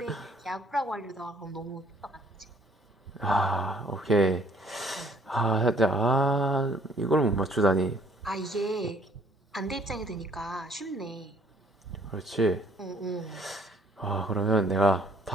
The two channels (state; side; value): normal; both; correlation 0.60